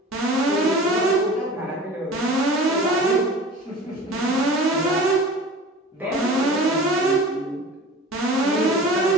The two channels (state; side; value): normal; both; correlation 0.39